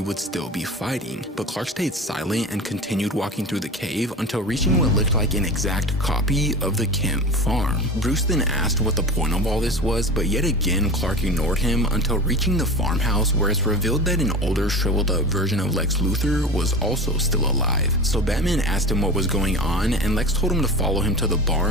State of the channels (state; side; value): normal; both; correlation 0.31